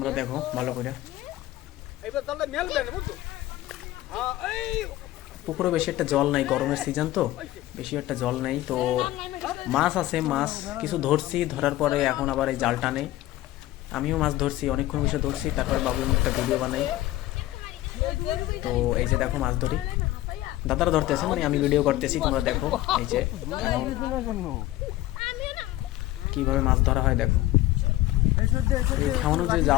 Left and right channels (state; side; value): quieter; right; 15.8 dB